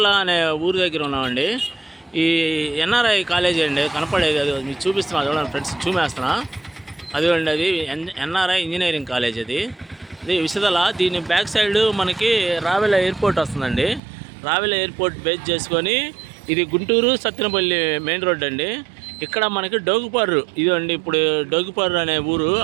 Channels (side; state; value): left; drops out; at 14.0 s